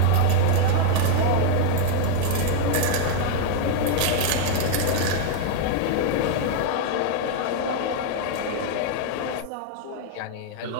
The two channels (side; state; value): both; different; correlation 0.00